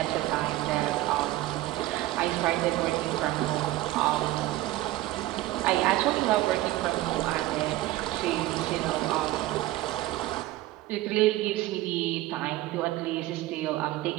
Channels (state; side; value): quieter; left; 16.6 dB